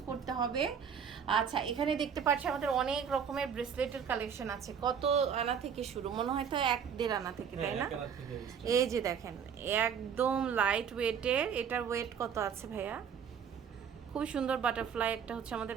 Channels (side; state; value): left; quieter; 7.4 dB